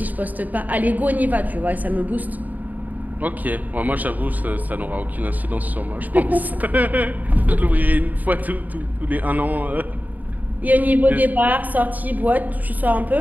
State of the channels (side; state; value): left; late; 0.081 ms